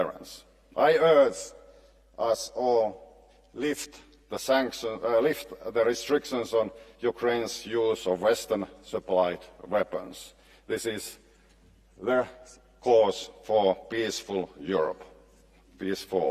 I urge us all lift the restrictions on Ukraine's use of Western-supplied weapons. This is the cause for peaceful Europe, peace for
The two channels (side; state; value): both; identical; correlation 1.00